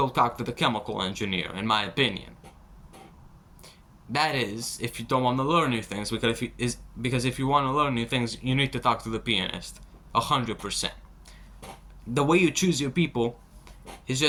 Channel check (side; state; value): both; identical; correlation 1.00